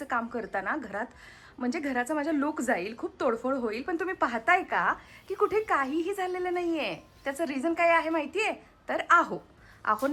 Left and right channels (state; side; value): identical; both; correlation 1.00